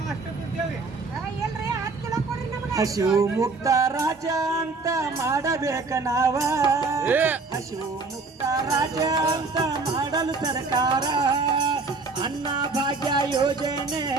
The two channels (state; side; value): quieter; left; 4.0 dB